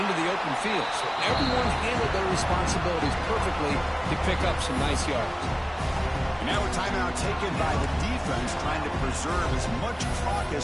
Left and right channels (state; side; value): identical; both; correlation 1.00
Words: the open field. So everyone handled their responsibilities perfectly to pick up some nice yards. And now a timeout taken by the defense, trying to preserve as much clock as